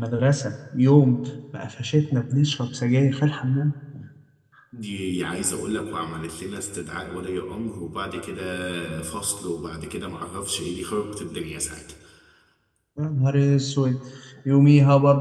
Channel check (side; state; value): both; identical; correlation 1.00